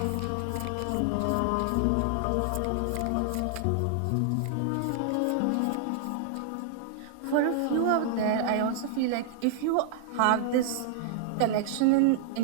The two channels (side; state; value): both; different; correlation -0.01